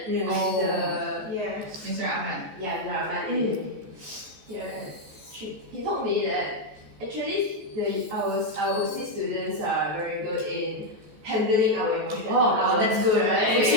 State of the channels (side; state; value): left; late; 14 ms